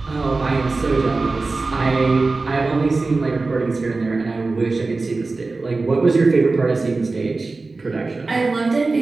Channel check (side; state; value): left; quieter; 3.6 dB